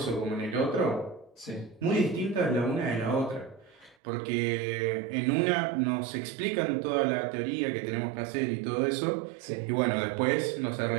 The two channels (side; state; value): left; drops out; at 4.0 s